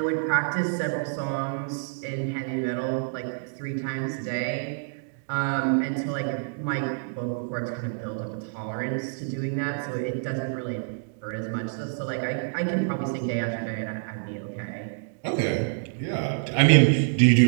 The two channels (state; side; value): silent; left; digital silence